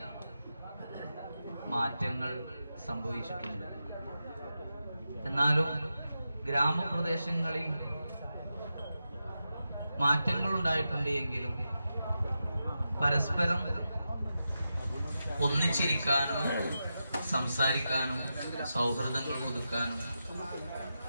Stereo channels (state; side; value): inverted; both; correlation -0.89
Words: മാറ്റങ്ങൾ സംഭവിച്ചിട്ടുണ്ട്. എന്നാലും ഗ്രാമപ്രദേശങ്ങളിൽ മാറ്റങ്ങൾ ഉണ്ടായിട്ടുണ്ട് എങ്കിലും പരസ്പരം ഒന്നിച്ചിരിക്കാനും സംസാരിക്കാനും സൗഹൃദങ്ങൾ പുതുക്കാനും